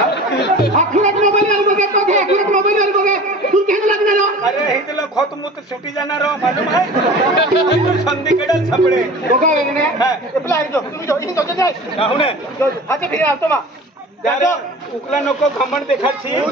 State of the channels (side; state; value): both; normal; correlation 0.39